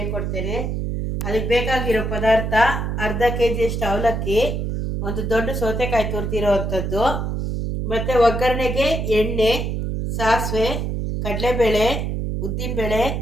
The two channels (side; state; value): right; noise; hum, 2 dB below the sound